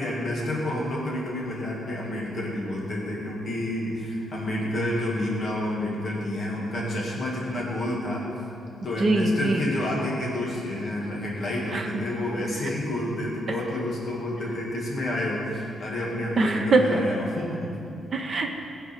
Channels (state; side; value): normal; both; correlation 0.76